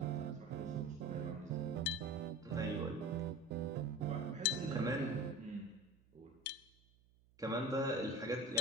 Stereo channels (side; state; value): right; noise; hum, 30 dB below the sound